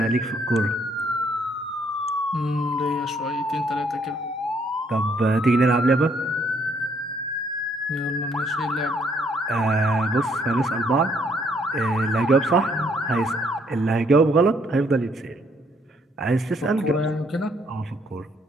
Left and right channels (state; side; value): normal; both; correlation 0.68